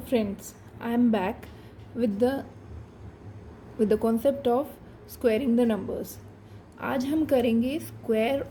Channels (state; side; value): identical; both; correlation 1.00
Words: friends, I am back with the concept of squaring the numbers. आज हम करेंगे square